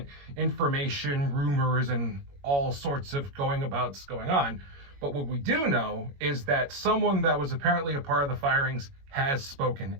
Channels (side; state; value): left; late; 21 ms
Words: information, rumors, and all sorts of going on. But what we do know is that someone that was apparently a part of the firings has spoken